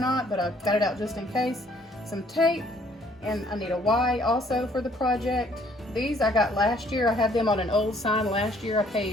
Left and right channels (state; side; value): normal; both; correlation 0.62